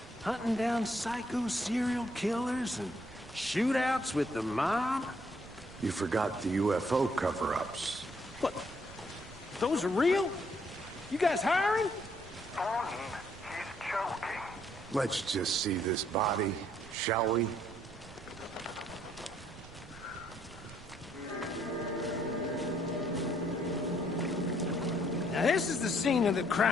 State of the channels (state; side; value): noise; right; rumble, 19 dB below the sound